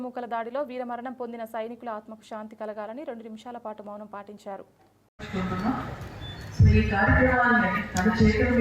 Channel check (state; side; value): identical; both; correlation 1.00